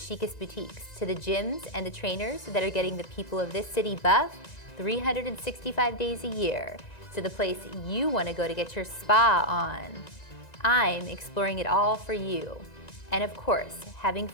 boutiques, to the gyms and the trainers that are getting the people of this city buff 365 days a year, to the place you want to go to get your spa on. I'm exploring it all for you, and of course, having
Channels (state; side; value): late; right; 1.9 ms